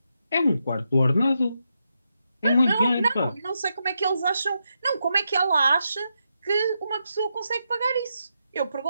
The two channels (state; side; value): inverted; both; correlation -0.84